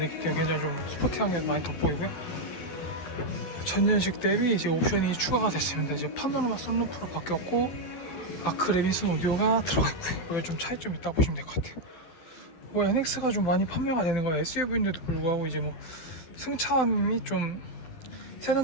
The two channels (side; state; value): right; late; 12 ms